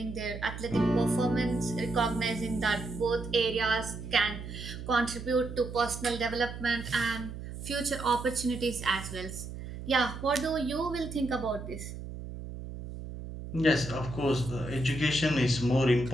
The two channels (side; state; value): right; noise; hum, 9 dB below the sound